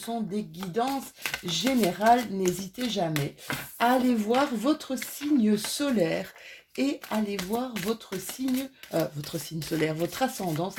des guidances générales. N'hésitez jamais à aller voir votre signe solaire et allez voir votre signe solaire, votre ascendant.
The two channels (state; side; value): identical; both; correlation 1.00